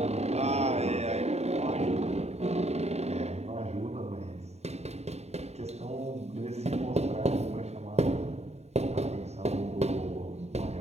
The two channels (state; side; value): late; left; 0.31 ms